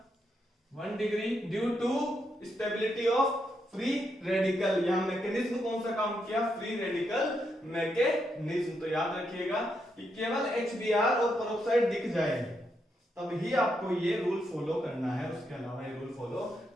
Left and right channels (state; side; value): normal; both; correlation 0.80